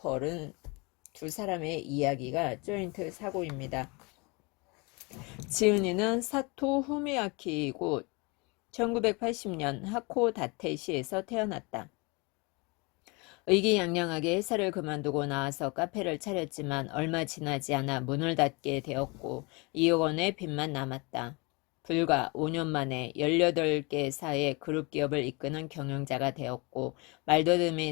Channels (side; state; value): right; quieter; 28.3 dB